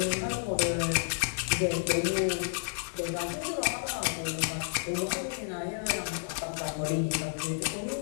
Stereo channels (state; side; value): silent; right; digital silence